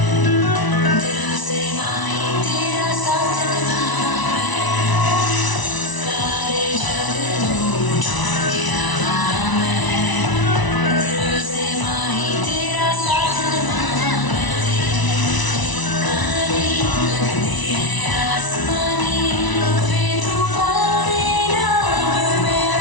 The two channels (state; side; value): late; right; 1.0 ms